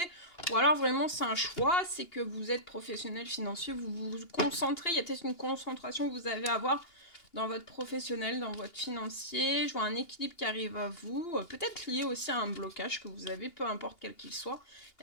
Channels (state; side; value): late; right; 2.8 ms